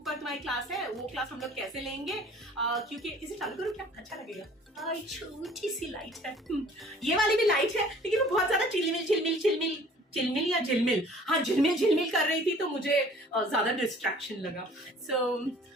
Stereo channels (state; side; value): normal; both; correlation 0.51